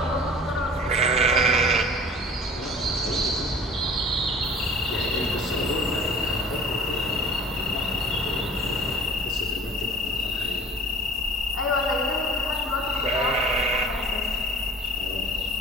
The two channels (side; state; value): both; normal; correlation 0.45